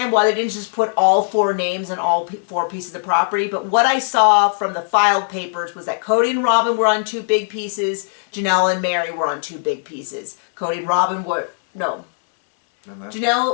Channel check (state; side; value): silent; right; digital silence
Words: why they didn't just put all 4 names and all 4 pieces of property, but what I saw from the filed papers was that Cody and Robin were on 2 big pieces, Janelle and Mary were on 2 big pieces. Cody and Robin were, no,